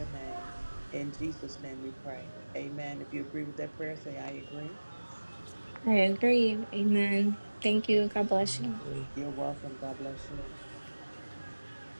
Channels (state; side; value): inverted; both; correlation -1.00